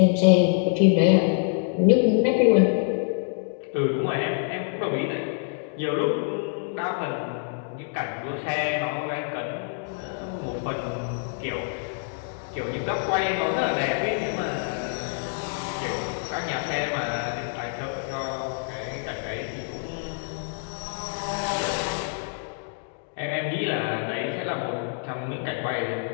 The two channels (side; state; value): right; silent; 59 dB below the other